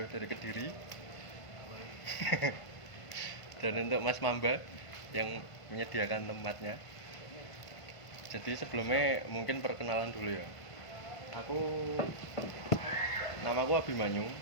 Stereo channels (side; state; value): right; late; 1.5 ms